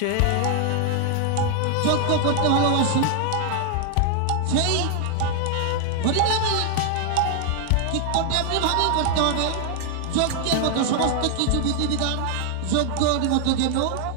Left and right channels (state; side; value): different; both; correlation 0.00